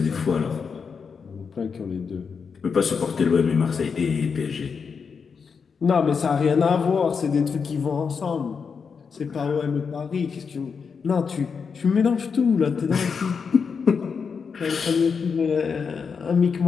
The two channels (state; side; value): quieter; right; 5.8 dB